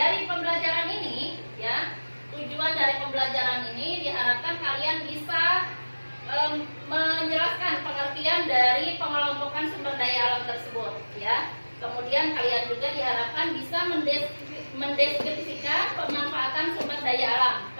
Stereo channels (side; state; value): both; inverted; correlation -1.00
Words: pembelajaran ini ya, tujuan dari pembelajaran ini diharapkan kalian bisa menjelaskan pengertian dari pengelompokan sumber daya alam tersebut ya. Kemudian kalian juga diharapkan bisa mendeskripsikan pemanfaatan sumber daya alam.